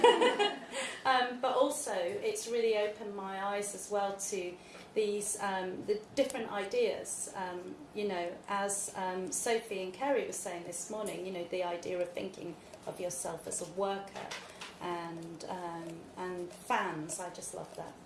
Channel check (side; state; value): both; identical; correlation 1.00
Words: But also, it's really opened my eyes as well to these the different ideas. As Sophie and Kerry were saying this morning, the idea of thinking of yourself as a worker and fans. I just love that.